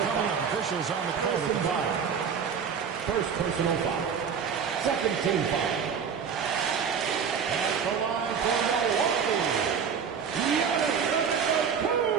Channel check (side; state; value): left; quieter; 6.8 dB